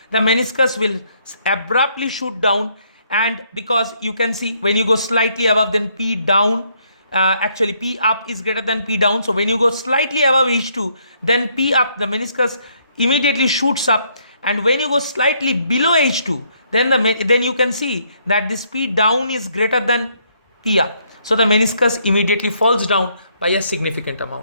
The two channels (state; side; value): inverted; both; correlation -0.70